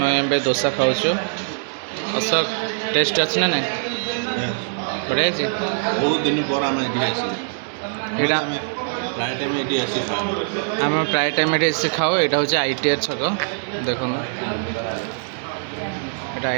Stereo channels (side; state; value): left; silent; digital silence